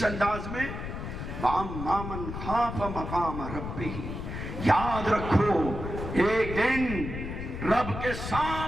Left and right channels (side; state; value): left; noise; rumble, 6 dB below the sound